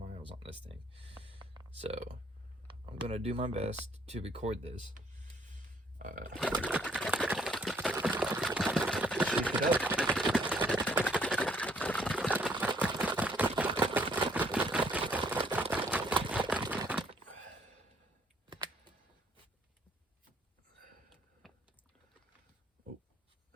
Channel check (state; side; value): normal; both; correlation 0.65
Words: on this thing. So I'm gonna do my best to record this. Shake it up. Oh,